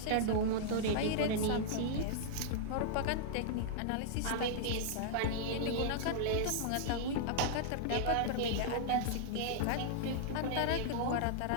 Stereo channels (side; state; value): both; different; correlation -0.01